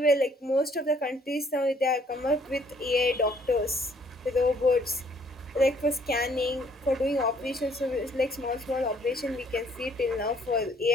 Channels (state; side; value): normal; both; correlation 0.63